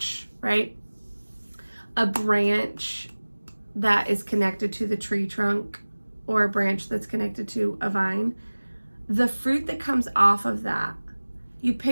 right? A branch that is connected to the tree trunk, or a branch that's connected to a vine. The fruit that comes off of that, you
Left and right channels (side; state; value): both; inverted; correlation -1.00